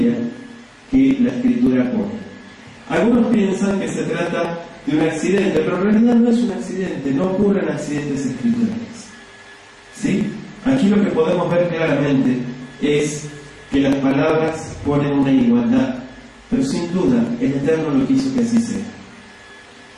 que la escritura pone. Algunos piensan que se trata de un accidente, pero en realidad no es un accidente, no ocurren accidentes escriturales. ¿Sí? Aquí lo que podemos ver claramente es que las palabras ponen una igualdad, pero sin duda el Eterno lo quiso que así sea.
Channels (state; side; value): identical; both; correlation 1.00